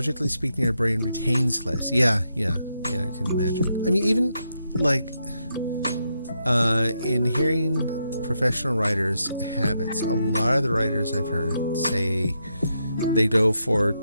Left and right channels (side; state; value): both; inverted; correlation -0.82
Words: speaking, our brain retains less. Yeah, I can imagine. I mean, even like in hearing professional writers' habits, a lot of the writers I've heard say they go for,